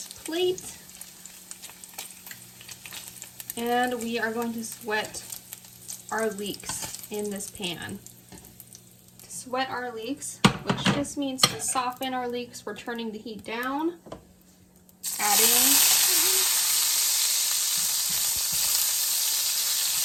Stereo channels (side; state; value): both; identical; correlation 1.00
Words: plate. And we are going to sweat our leeks in this pan. To sweat our leeks, which just means to soften our leeks, we're turning the heat down, adding